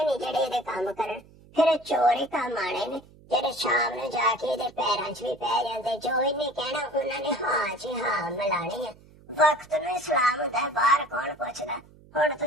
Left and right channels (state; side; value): noise; right; hum, 25 dB below the sound